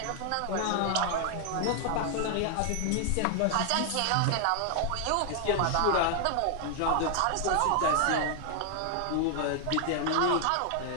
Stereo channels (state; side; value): different; both; correlation 0.00